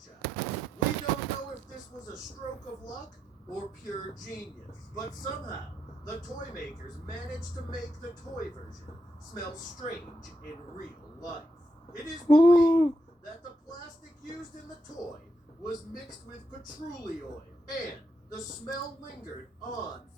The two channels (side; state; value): both; normal; correlation 0.83